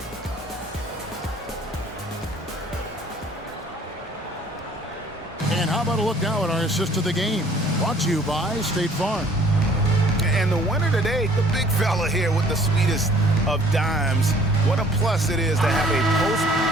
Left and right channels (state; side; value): normal; both; correlation 0.55